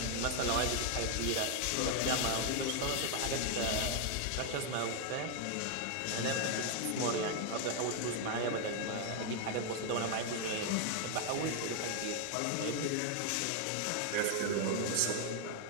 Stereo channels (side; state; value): both; different; correlation 0.00